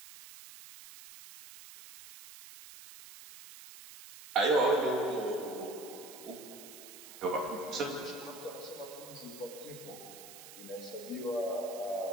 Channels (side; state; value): right; noise; hiss, 15 dB below the sound